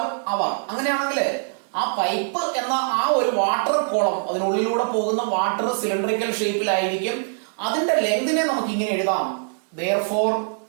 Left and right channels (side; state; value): left; silent; 63 dB below the other